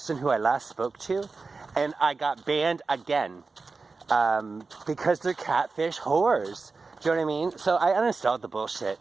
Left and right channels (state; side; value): quieter; left; 4.2 dB